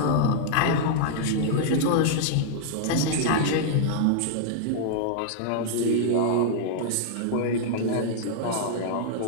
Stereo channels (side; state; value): both; different; correlation -0.02